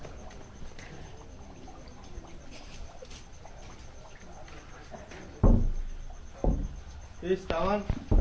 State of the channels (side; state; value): both; identical; correlation 1.00